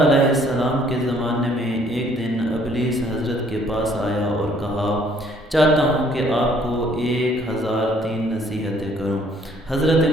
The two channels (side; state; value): both; normal; correlation 0.62